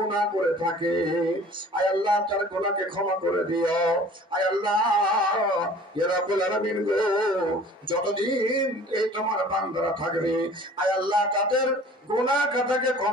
করে থাকে আয় আল্লাহ তার গুনাহকে ক্ষমা করে দিও। আয় আল্লাহ ইয়া রাব্বুল আলামিন গো, যতদিন এই তোমার বান্দারা থাকবে আয় আল্লাহ তাদের গুনাহ খাতাকে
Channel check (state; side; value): normal; both; correlation 0.48